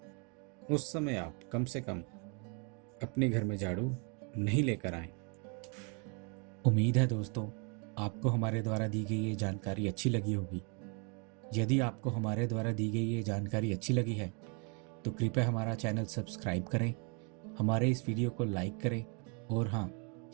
उस समय आप कम से कम अपने घर में झाड़ू नहीं लेकर आएं। उम्मीद है दोस्तों आपको हमारे द्वारा दी गई ये जानकारी अच्छी लगी होगी। यदि आपको हमारे द्वारा दी गई ये जानकारी अच्छी लगी है तो कृपया हमारा चैनल सब्सक्राइब करें, हमारे इस वीडियो को लाइक करें और हाँ,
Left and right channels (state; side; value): quieter; left; 35.4 dB